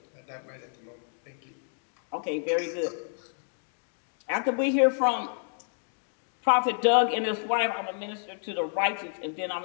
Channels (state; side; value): silent; right; 58 dB below the other